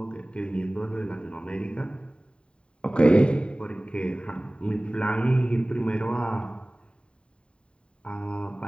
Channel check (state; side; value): late; right; 0.054 ms